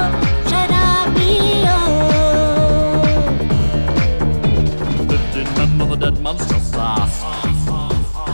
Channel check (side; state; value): both; inverted; correlation -1.00